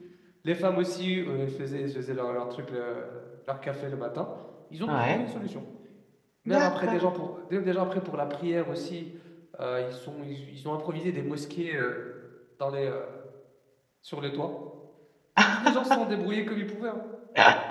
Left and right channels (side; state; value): both; identical; correlation 1.00